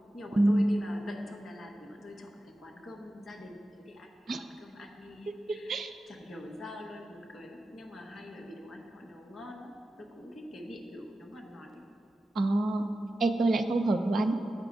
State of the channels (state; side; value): normal; both; correlation 0.93